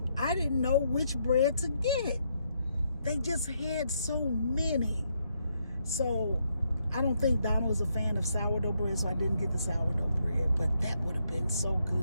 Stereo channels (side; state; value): both; inverted; correlation -0.77